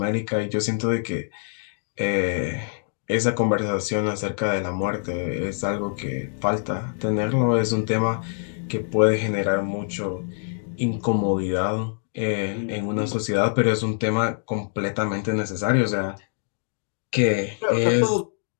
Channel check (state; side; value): silent; right; digital silence